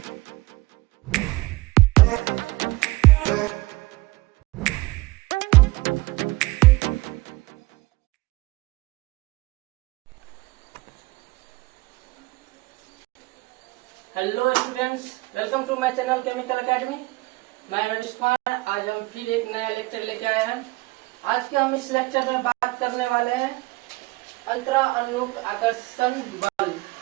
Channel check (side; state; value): left; quieter; 21.2 dB